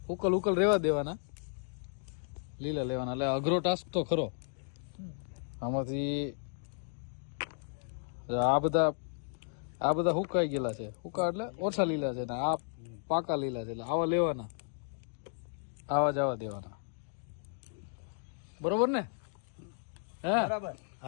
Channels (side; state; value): right; silent; digital silence